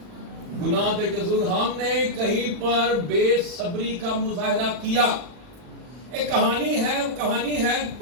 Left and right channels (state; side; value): late; left; 40 ms